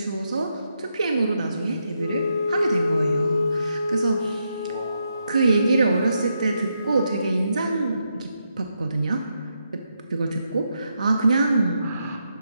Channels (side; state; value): both; inverted; correlation -0.82